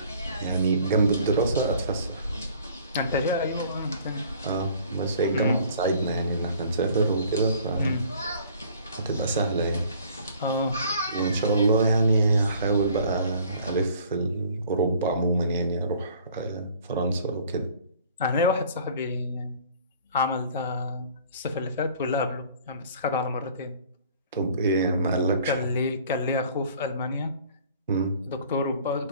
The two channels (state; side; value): inverted; both; correlation -0.53